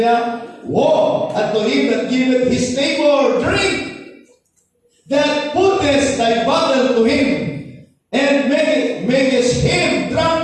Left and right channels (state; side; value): identical; both; correlation 1.00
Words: woe unto him that giveth his neighbor drink, that putteth thy bottle to him, and makest him